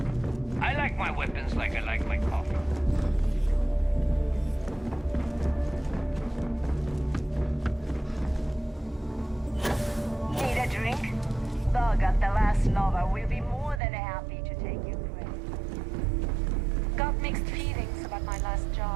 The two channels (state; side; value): drops out; left; at 13.8 s